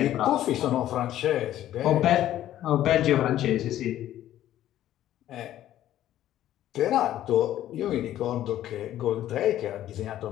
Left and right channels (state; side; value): quieter; right; 12.7 dB